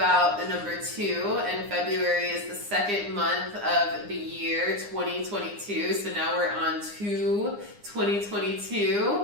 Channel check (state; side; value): late; left; 9.8 ms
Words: the number 2, and February is the second month of the year 2022. So now we're on